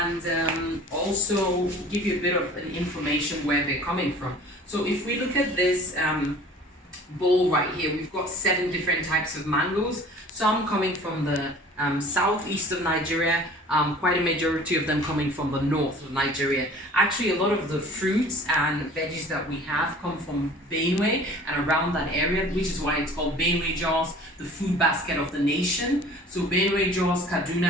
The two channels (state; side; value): normal; both; correlation 0.46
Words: also give you a bit of an information where they're coming from. So if we look at this bowl right here, we've got 7 different types of mangoes, some coming from the southeast of Nigeria, quite a majority of them coming from the north of Nigeria. Actually, a lot of the fruits and veggies that we have come from Benue and around that area, which is why it's called Benue Jos, the food basket of the nation. So Benue Jos,